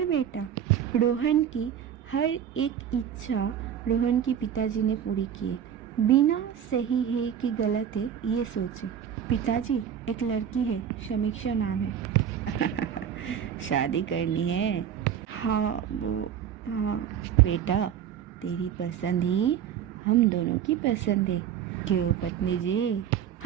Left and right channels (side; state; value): left; quieter; 9.1 dB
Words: बेटा। रोहन की हर एक इच्छा रोहन के पिताजी ने पूरी की, बिना सही है कि गलत है ये सोचे। पिताजी एक लड़की है, समीक्षा नाम है। शादी करनी है? हाँ बेटा, तेरी पसंद ही हम दोनों की पसंद है, क्यों पत्नी जी?